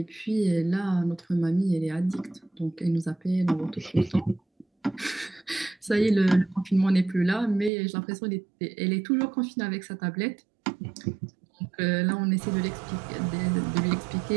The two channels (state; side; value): drops out; left; at 7.7 s